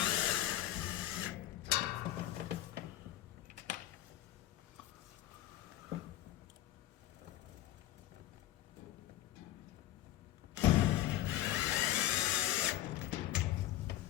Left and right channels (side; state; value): right; quieter; 13.9 dB